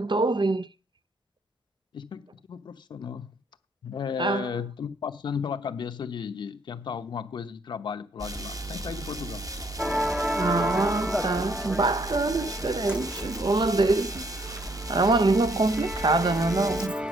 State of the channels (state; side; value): normal; both; correlation 0.67